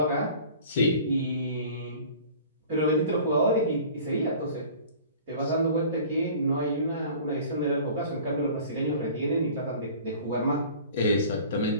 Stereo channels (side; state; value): both; inverted; correlation -0.45